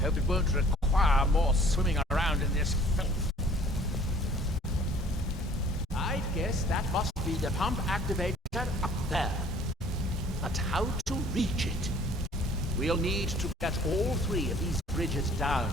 it won't require more swimming around in this filth. I guess that must be the pump activator up there. But how to reach it? We'll need to get all 3 of these bridges down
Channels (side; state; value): both; normal; correlation 0.54